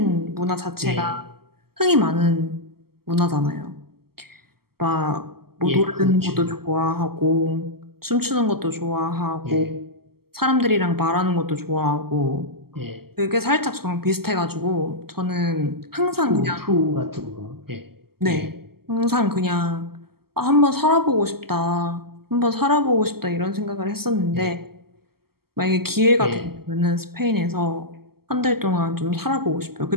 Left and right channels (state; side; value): late; left; 0.95 ms